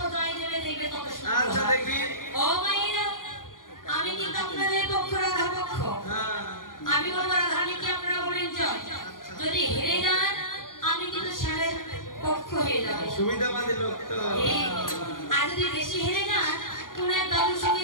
জয় দেবে, দেখবে তত সুন্দর। আচ্ছা দেখি। ও মাইরা, আমি কিন্তু আপনাদের পক্ষ, রাধা পক্ষ। আমি বলবো রাধানীকে, আপনারা বলেন জয়। যদি হেরে যান আমি কিন্তু শ্যামের পক্ষ হয়ে যাবে। সুবিধাবাদী লোক তো। আর যদি বেশি হেরে যান কোন এক দাদুর সঙ্গে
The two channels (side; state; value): right; late; 0.90 ms